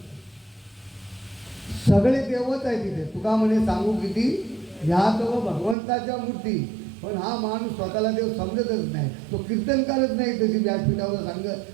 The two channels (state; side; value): drops out; left; at 5.8 s